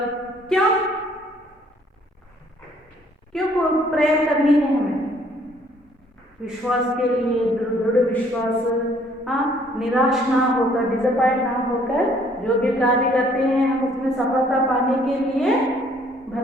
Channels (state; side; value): normal; both; correlation 0.61